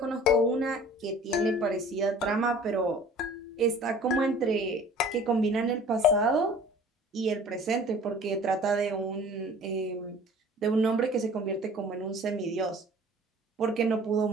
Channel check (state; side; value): normal; both; correlation 0.47